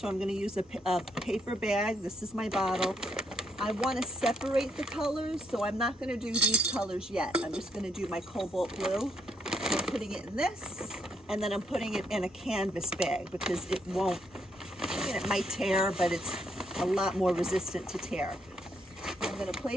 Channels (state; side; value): normal; both; correlation 0.74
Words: I'm going to use a paper bag. This is my bottle. I want to separate the colors, so I'm not going to do these colors yet. I'm just going to do my cobalt blue. I'm putting it in this, and then I'm putting it in a canvas bag because it won't, it might tear, but it's a lot more resistant to tear. I'm going to